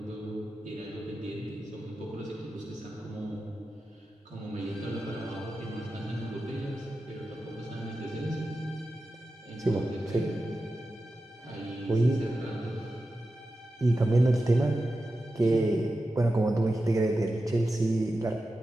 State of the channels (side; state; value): both; normal; correlation 0.92